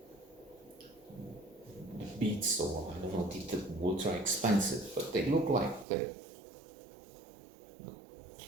beats, or I don't know, they're ultra expensive, but they look like the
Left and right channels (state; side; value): drops out; left; at 5.9 s